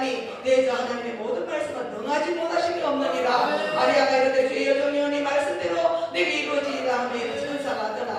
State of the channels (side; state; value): both; identical; correlation 1.00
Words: 내 자 하나님의 모든 말씀은 능하지 못하심이 없느니라. 마리아가 이르되 주의 여종이오니 말씀대로 내게 이루어지리라 하며 천사가